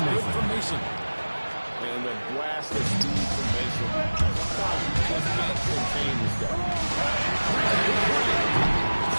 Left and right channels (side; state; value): both; inverted; correlation -1.00